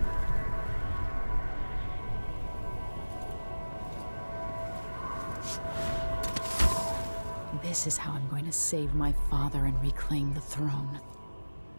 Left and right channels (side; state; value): both; inverted; correlation -1.00